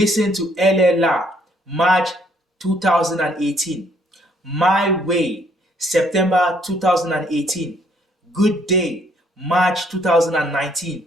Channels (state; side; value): normal; both; correlation 0.66